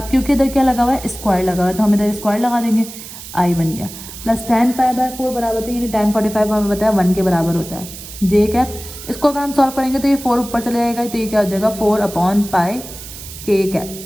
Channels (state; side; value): noise; right; hiss, 13 dB below the sound